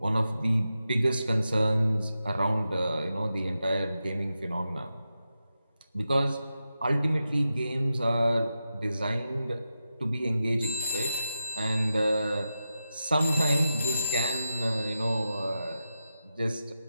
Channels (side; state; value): both; inverted; correlation -0.90